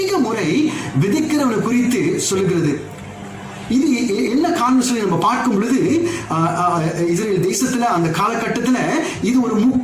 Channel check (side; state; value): both; identical; correlation 1.00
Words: முறை விதைக்கிறவனை குறித்து சொல்லுகிறது. இது என்ன காரணம் சொல்லி நம்ம பார்க்கும் பொழுது, இஸ்ரேல் தேசத்துல அந்த காலகட்டத்துல இது ஒரு